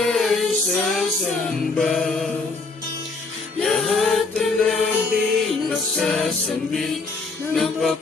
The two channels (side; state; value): right; quieter; 3.9 dB